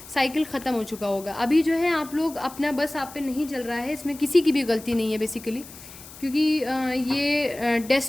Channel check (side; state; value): left; noise; hiss, 17 dB below the sound